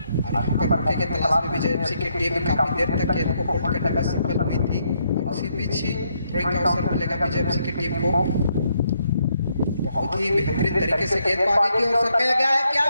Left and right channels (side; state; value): both; inverted; correlation -0.75